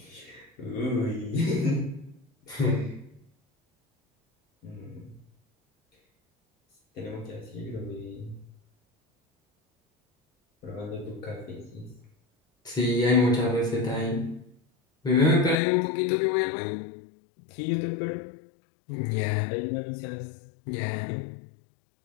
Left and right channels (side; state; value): right; drops out; at 15.6 s